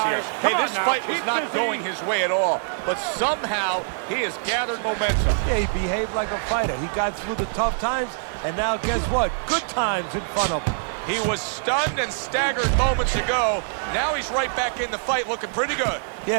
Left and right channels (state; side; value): silent; left; digital silence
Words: Hey, this fight was not going his way at all, but somehow he has gathered momentum. Yeah, he behaved like a fighter. He got through the tough times, and now guess what? Good times in front of him. He was stunned and staggered moments ago. Now he's right back in the fight looking pretty good.